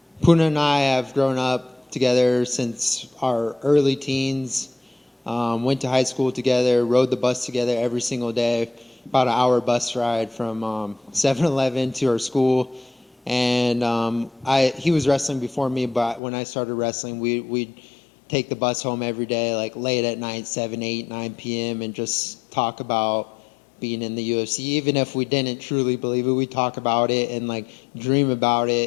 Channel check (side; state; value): right; drops out; at 16.2 s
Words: Puna and I have grown up together since our early teens. Went to high school together, rode the bus together every single day, about an hour bus ride from 7-Eleven to our school. And he was wrestling before me, but when I started wrestling, we'd take the bus home every day, like late at night, 7, 8, 9 p.m., and just talk about being in the UFC. Even if we didn't truly believe it, we'd talk about it and like dream about